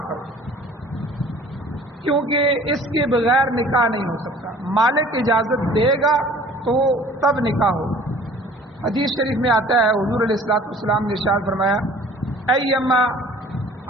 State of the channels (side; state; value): both; normal; correlation 0.50